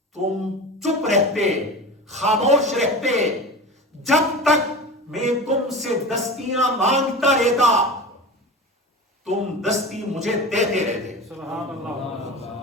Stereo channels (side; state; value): both; normal; correlation 0.31